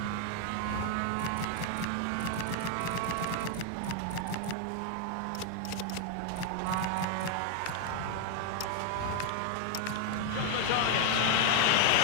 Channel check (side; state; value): both; different; correlation 0.00